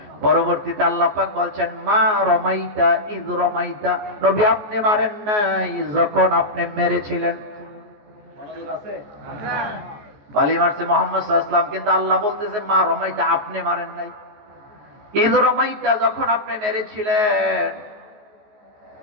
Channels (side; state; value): left; late; 14 ms